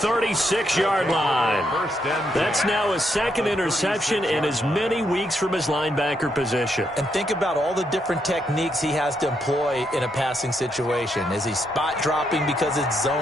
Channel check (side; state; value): both; normal; correlation 0.78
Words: line. That's now his 2nd interception in as many weeks from his linebacker position. And think about all the different techniques he has to employ in a passing situation. Is he spot dropping because it's